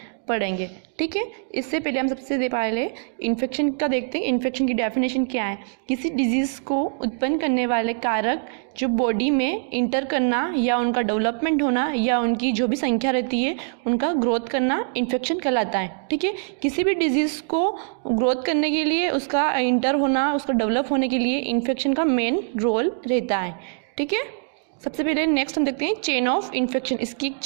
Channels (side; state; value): left; silent; digital silence